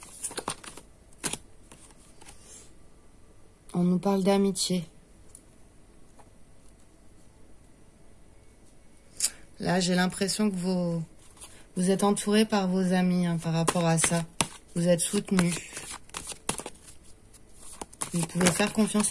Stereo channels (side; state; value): both; identical; correlation 1.00